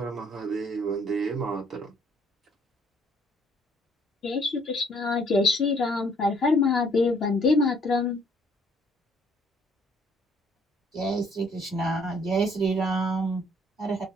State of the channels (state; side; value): normal; both; correlation 0.62